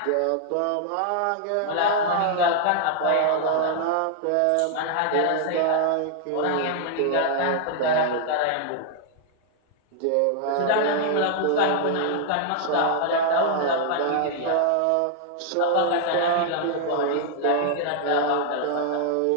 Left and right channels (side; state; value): both; different; correlation 0.00